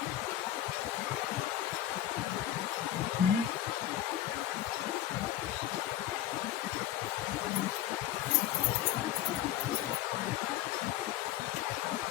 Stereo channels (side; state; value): right; quieter; 12.6 dB